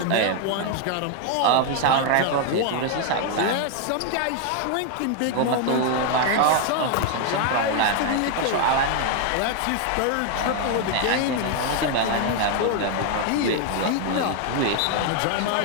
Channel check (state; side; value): different; both; correlation 0.01